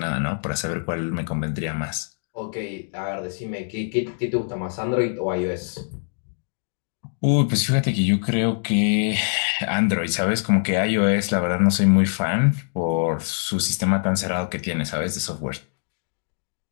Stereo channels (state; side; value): silent; right; digital silence